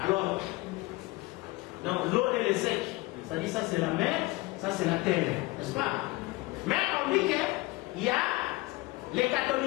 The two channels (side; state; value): right; quieter; 21.7 dB